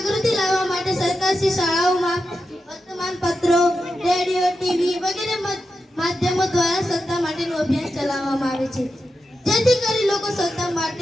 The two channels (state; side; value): normal; both; correlation 0.89